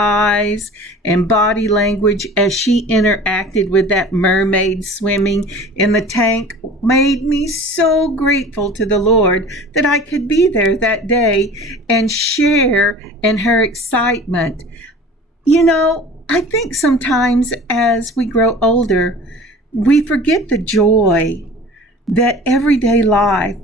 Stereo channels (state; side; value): normal; both; correlation 0.42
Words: and body language as she interacted with that mermaid swimming in the tank made me so grateful to the Lord that I could be there that day and share in her excitement. You know, I think sometimes as we grow older, we forget the joy that everyday life,